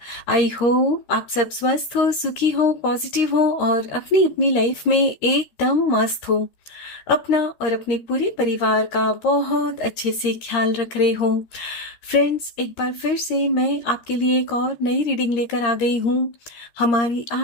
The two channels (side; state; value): right; late; 13 ms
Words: आई होप आप सब स्वस्थ हो, सुखी हो, पॉजिटिव हो और अपनी अपनी लाइफ में एकदम मस्त हो। अपना और अपने पूरे परिवार का बहुत अच्छे से ख्याल रख रहे हो। फ्रेंड्स, एक बार फिर से मैं आपके लिए एक और नई रीडिंग लेकर आ गई हूँ। हमारी